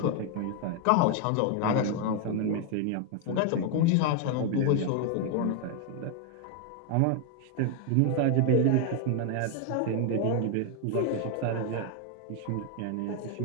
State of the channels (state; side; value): different; both; correlation 0.01